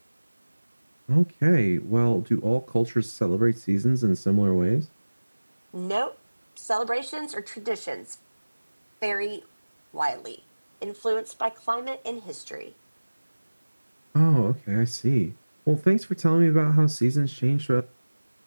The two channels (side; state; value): both; inverted; correlation -1.00